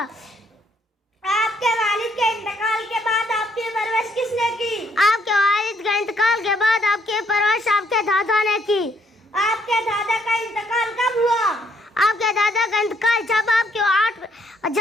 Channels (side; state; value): both; normal; correlation 0.69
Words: آپ کے والد کے انتقال کے بعد آپ کی پرورش کس نے کی؟ آپ کے والد کے انتقال کے بعد آپ کی پرورش آپ کے دادا نے کی. آپ کے دادا کا انتقال کب ہوا؟ آپ کے دادا کا انتقال جب آپ